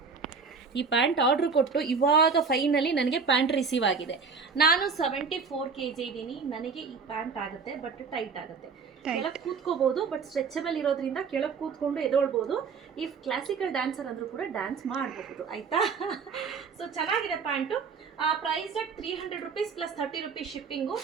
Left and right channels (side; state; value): left; quieter; 5.2 dB